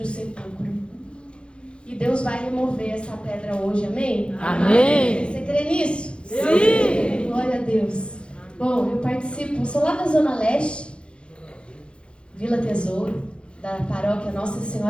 sepulcro. E Deus vai remover essa pedra hoje, amém? Amém. Você crê nisso? Sim. Glória a Deus. Bom, eu participo, sou lá da Zona Leste, Vila Tesouro, da paróquia Nossa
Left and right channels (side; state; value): right; late; 0.056 ms